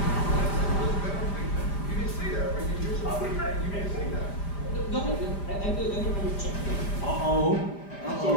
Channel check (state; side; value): late; right; 5.0 ms